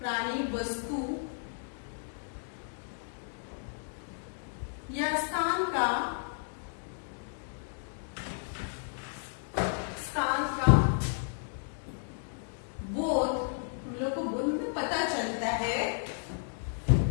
वस्तु या स्थान का बोध, हम लोग को बोध में पता चलता है,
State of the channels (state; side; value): silent; right; digital silence